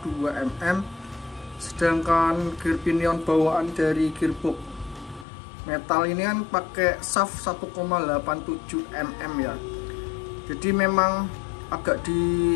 mm, sedangkan gear pinion bawaan dari gearbox metal ini kan pakai shaft 1,87 mm ya. Jadi memang agak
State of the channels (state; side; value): drops out; right; at 5.2 s